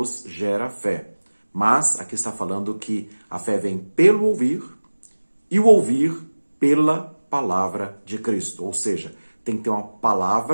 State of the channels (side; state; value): both; inverted; correlation -1.00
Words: gera fé, mas aqui está falando que a fé vem pelo ouvir e o ouvir pela palavra de Cristo. Ou seja, tem que ter uma